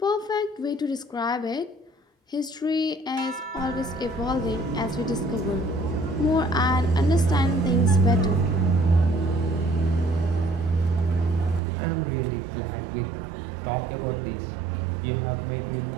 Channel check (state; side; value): drops out; left; at 11.6 s